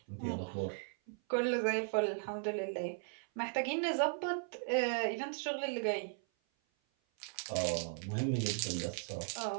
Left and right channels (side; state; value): left; silent; 53 dB below the other